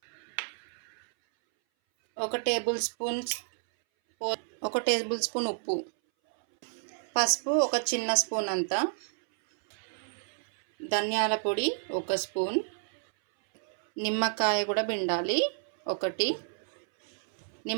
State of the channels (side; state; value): left; silent; 58 dB below the other